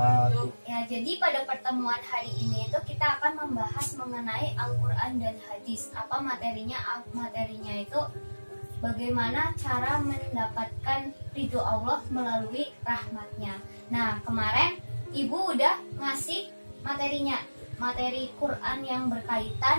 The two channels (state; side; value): inverted; both; correlation -1.00